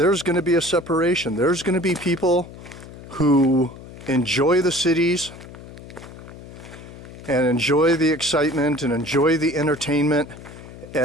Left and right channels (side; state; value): left; noise; hum, 16 dB below the sound